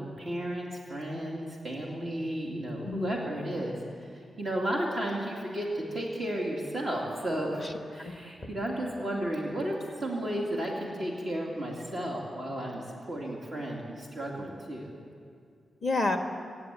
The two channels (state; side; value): normal; both; correlation 0.86